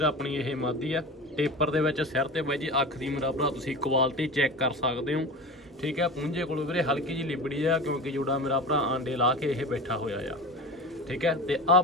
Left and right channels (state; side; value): normal; both; correlation 0.30